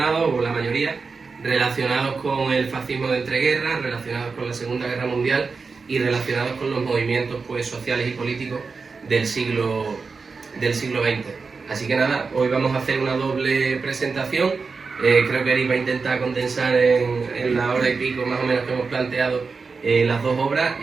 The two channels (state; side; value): quieter; left; 4.7 dB